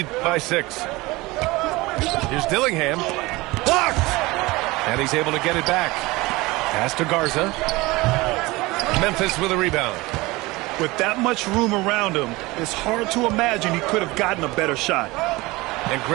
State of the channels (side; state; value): left; quieter; 21.5 dB